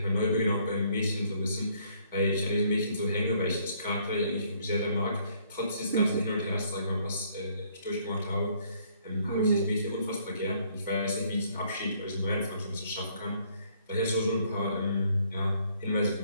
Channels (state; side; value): inverted; both; correlation -0.65